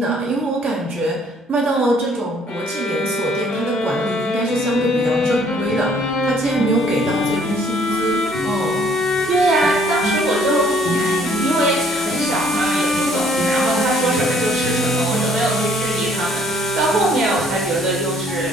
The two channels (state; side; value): normal; both; correlation 0.61